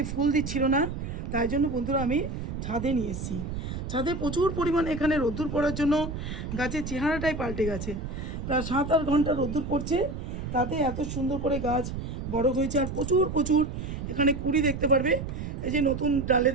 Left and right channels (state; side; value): noise; right; rumble, 6 dB below the sound